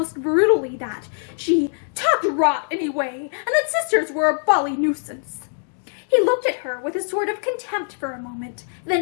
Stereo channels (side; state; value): right; silent; 64 dB below the other